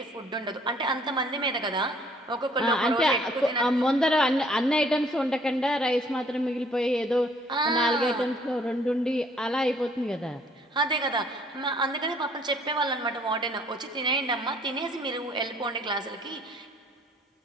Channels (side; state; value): both; normal; correlation 0.61